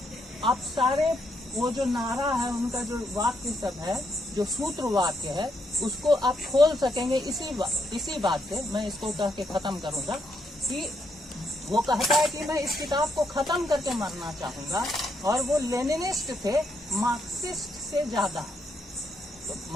आप सारे वो जो नारा है, उनका जो वाक्य सब है, जो सूत्र वाक्य है, उसको आप खोल सकेंगे इसी बात से। मैं इसको कह के खत्म करूंगा कि वो कहता है कि मैं इस किताब को खत्म करके मरना चाहूंगा, और वो लेनिनिस्ट थे, मार्क्सिस्ट से ज्यादा। तो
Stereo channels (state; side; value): normal; both; correlation 0.77